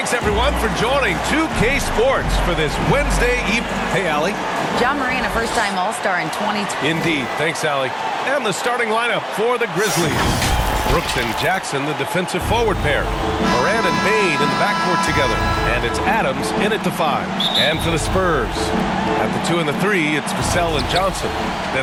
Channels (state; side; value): identical; both; correlation 1.00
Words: everyone, for joining 2K Sports for this Wednesday evening. Hey, Allie. Ja Morant, a first-time All-Star in 2020. Indeed. Thanks, Allie. And the starting lineup for the Grizzlies. Brooks and Jackson, the defensive forward pair. Morant and Bane in the backcourt together. And it's Adams in at the 5. And for the Spurs, at the 2 and the 3, it's Vassell and Johnson.